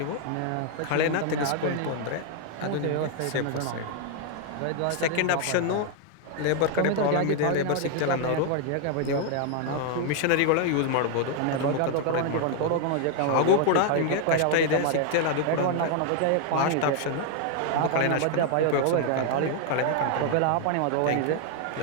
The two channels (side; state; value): both; different; correlation 0.00